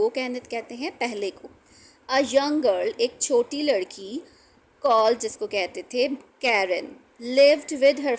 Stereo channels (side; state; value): both; identical; correlation 1.00